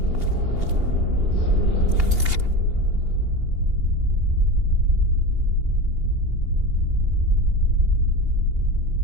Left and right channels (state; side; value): late; left; 2.8 ms